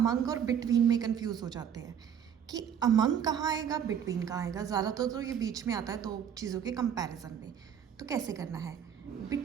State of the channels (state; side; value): quieter; left; 8.6 dB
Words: और बिटवीन में कंफ्यूज हो जाते हैं कि अमंग कहाँ आएगा, बिटवीन कहाँ आएगा। ज़्यादातर तो ये बीच में आता है दो चीज़ों के कंपैरिजन में। तो कैसे करना है?